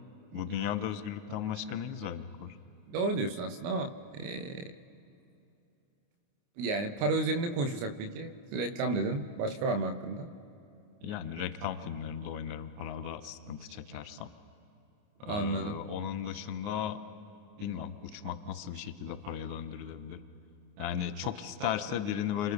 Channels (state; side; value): late; left; 29 ms